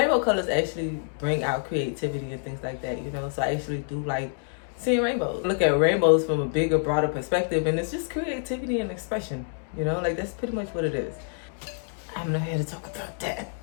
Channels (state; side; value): silent; right; 60 dB below the other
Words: colors actually bring out creativity and things like that, you know, so I actually do like seeing rainbows. Look at rainbows from a bigger, broader perspective, and it's just creativity and expression, you know, like that's pretty much what it is. I'm not here to talk about that.